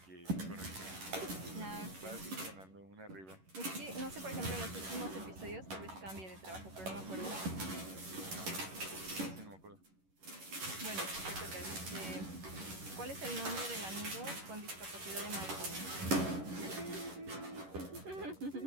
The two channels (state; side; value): late; left; 11 ms